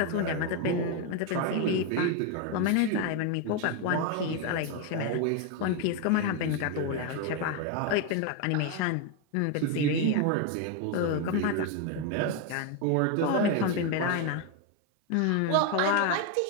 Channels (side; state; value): both; different; correlation 0.02